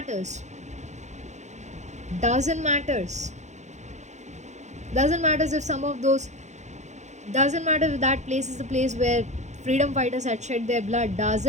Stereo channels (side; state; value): left; late; 0.34 ms